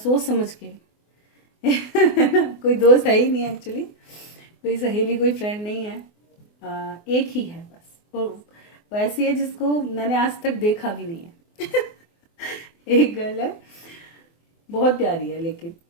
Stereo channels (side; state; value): right; late; 24 ms